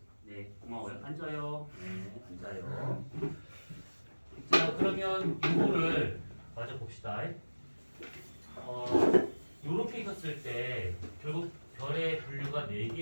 네, 고마워요. 앉아요. 네, 앉아요. 자, 그러면 이거를 마저 봅시다. 요렇게 있었을 때 결국 별의 분류가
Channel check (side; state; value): both; inverted; correlation -1.00